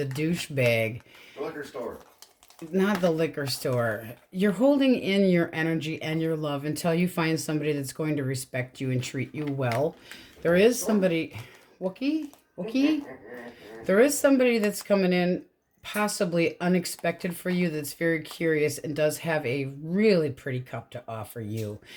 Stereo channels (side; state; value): both; identical; correlation 1.00